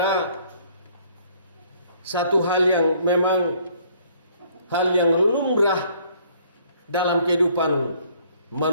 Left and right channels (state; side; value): inverted; both; correlation -0.61